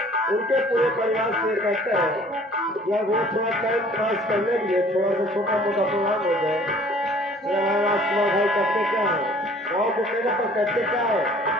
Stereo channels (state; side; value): normal; both; correlation 0.52